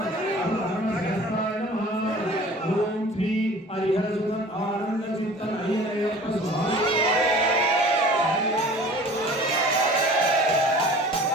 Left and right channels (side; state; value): both; normal; correlation 0.45